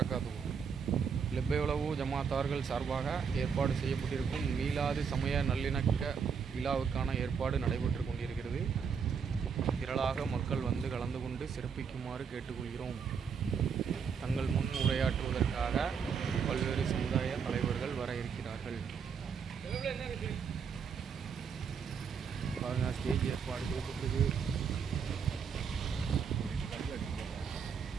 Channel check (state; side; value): quieter; left; 6.4 dB